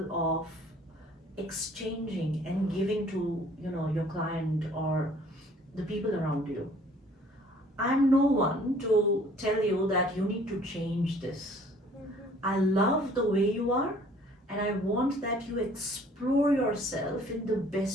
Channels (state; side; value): normal; both; correlation 0.55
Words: of exchanging and giving to, your client or the people around you. I'm no one to tell you that you need to change this. I love the way you are, and I want that you explore yourself in the